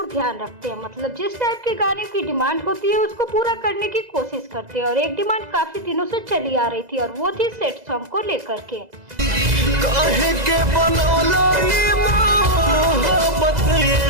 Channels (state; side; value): late; left; 2.0 ms